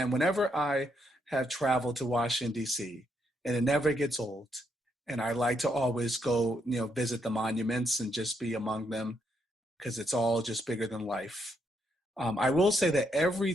whenever I have traveled to Washington, D.C., and it never gets old, and I like to always go, visit the monuments and just be among them because it's all just bigger than life. I will say that every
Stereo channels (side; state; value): both; normal; correlation 0.77